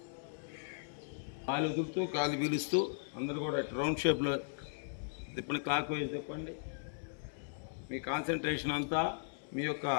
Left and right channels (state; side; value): silent; right; digital silence